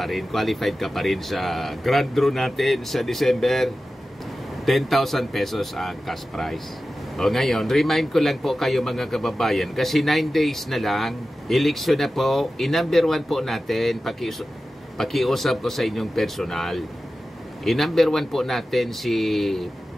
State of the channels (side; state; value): both; normal; correlation 0.94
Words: rin, qualified ka pa rin sa grand draw natin sa December. 10,000 pesos ang cash prize. O ngayon, remind ko lang po kayo mga kababayan, kasi 9 days na lang, eleksyon na po, i-number 1 po natin, pakiusap ko sa inyong personal. I-number 1 po natin si